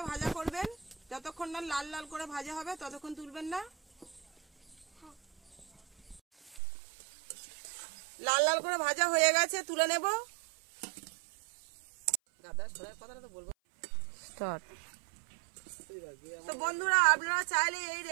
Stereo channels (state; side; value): drops out; left; at 6.6 s